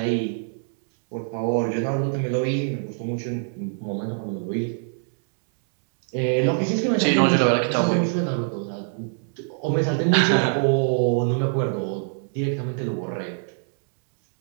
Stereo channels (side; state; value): left; silent; 63 dB below the other